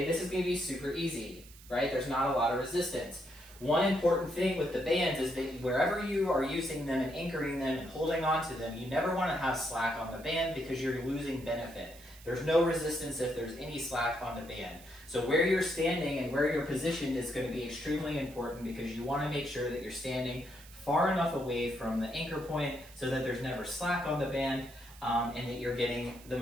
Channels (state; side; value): noise; right; hiss, 21 dB below the sound